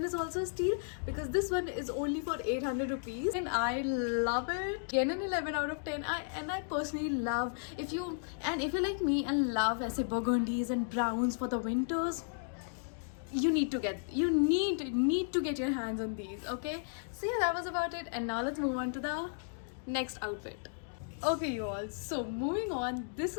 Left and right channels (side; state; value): right; silent; digital silence